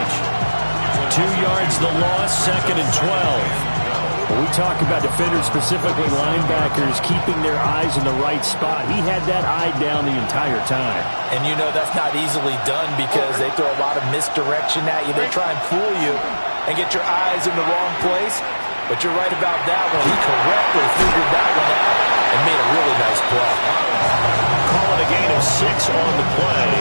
2 yards the loss, 2nd and 12. When we talk about defenders, specifically linebackers, keeping their eyes in the right spot, he had that eye down the entire time. And you know that's not easily done because they throw a lot of misdirection at you. They try and fool you and get your eyes in the wrong place. But you're right about that one. He correctly figured that one out and made a really nice play. Call it a gain of 6 on the play.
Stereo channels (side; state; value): both; inverted; correlation -1.00